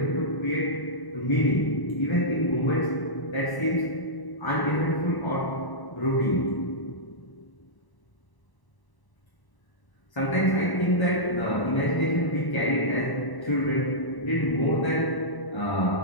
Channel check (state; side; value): late; right; 1.0 ms